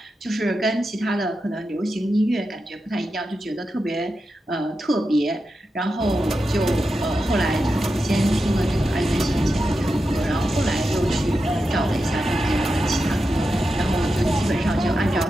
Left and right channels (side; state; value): both; normal; correlation 0.89